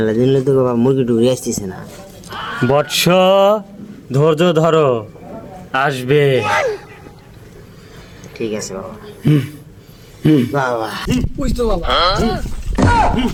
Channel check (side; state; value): both; identical; correlation 1.00